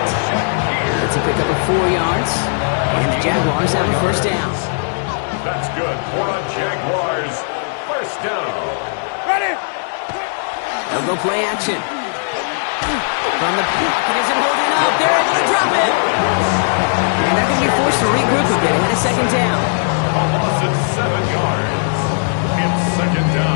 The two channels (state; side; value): silent; right; digital silence